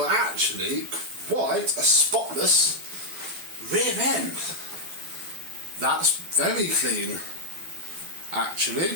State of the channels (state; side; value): late; left; 12 ms